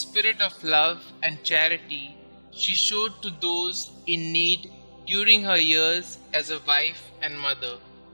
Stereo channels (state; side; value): inverted; both; correlation -1.00